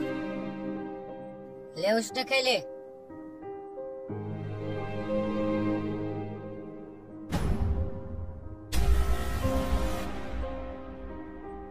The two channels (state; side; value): identical; both; correlation 1.00